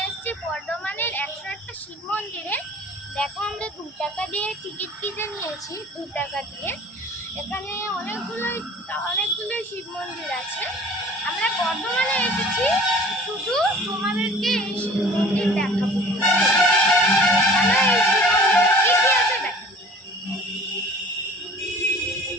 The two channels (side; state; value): both; normal; correlation 0.47